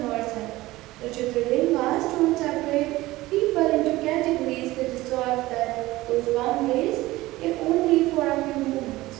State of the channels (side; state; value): left; quieter; 18.2 dB